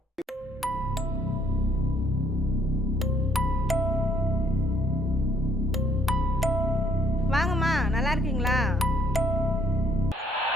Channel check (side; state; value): both; normal; correlation 0.65